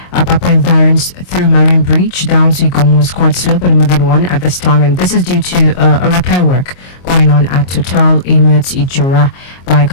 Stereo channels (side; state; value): right; late; 22 ms